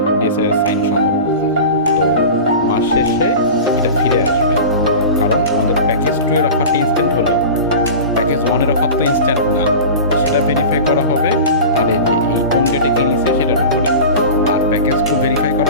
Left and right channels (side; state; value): both; inverted; correlation -0.32